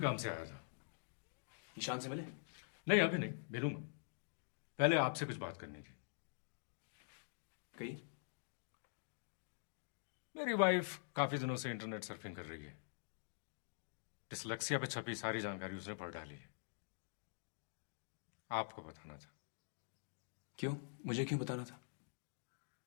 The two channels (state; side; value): silent; right; digital silence